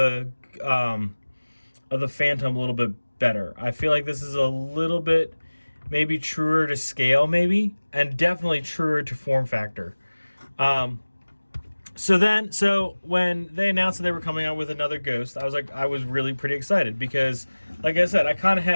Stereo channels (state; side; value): inverted; both; correlation -1.00